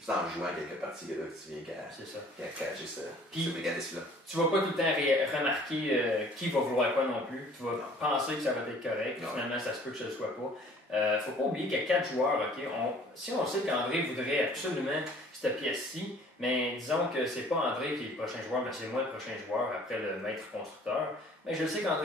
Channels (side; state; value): both; normal; correlation 0.53